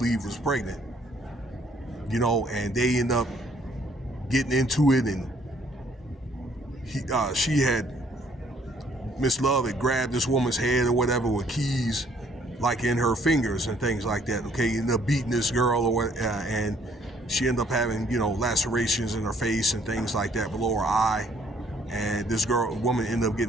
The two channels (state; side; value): normal; both; correlation 0.64